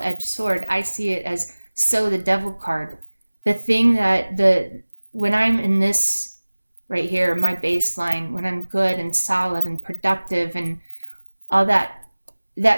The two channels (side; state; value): both; inverted; correlation -1.00